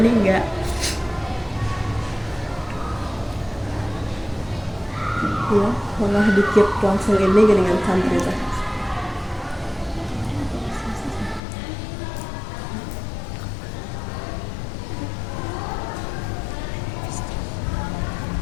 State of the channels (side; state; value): right; drops out; at 11.4 s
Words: enggak. Ya malah dikit langsung ini dengan santri teh.